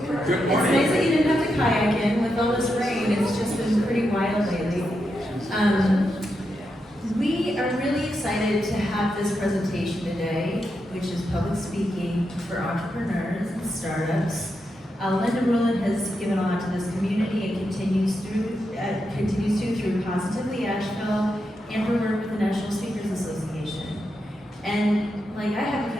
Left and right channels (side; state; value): both; normal; correlation 0.85